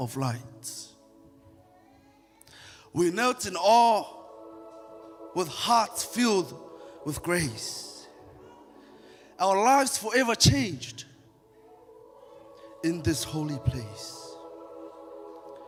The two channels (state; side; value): identical; both; correlation 1.00